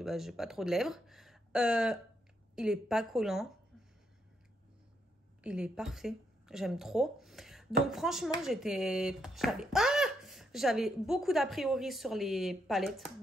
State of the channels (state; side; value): normal; both; correlation 0.78